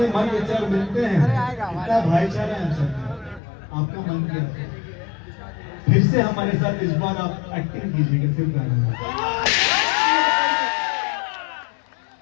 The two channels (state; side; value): drops out; right; at 3.4 s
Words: मन विचार मिलते हैं, इतना भाईचारा है हम सब। आपका मन क्या है? फिर से हमारे साथ इस बार आप एक्टिंग कीजिएगा सिर्फ गाने में।